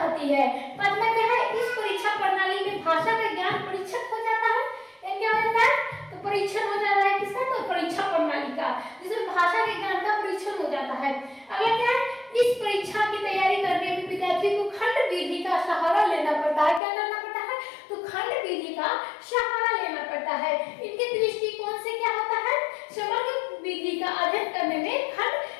है। पांचवा क्या है, इस परीक्षा प्रणाली में भाषा का ज्ञान परीक्षक हो जाता है। क्या होता है, तो परीक्षण हो जाता है किसका, तो परीक्षा प्रणाली का, जिसमें भाषा के ज्ञान का परीक्षण हो जाता है। अगला क्या है, इस परीक्षा की तैयारी करने में विद्यार्थी को खंड विधि का सहारा लेना पड़ता है। क्या करना पड़ता है, तो खंड विधि का सहारा लेना पड़ता है। इनके दृष्टिकोण से क्या होता है, समग्र विधि का अध्ययन करने में खंड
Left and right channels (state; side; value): drops out; right; at 16.8 s